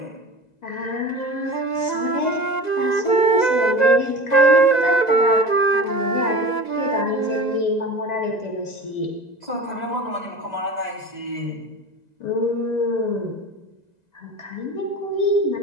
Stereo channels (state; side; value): late; right; 2.0 ms